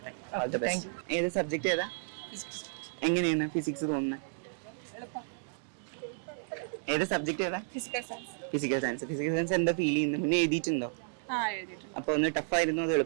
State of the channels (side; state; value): left; silent; digital silence